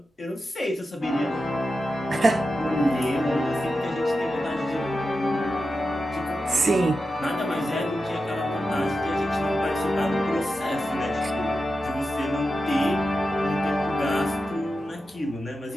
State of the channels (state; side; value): normal; both; correlation 0.90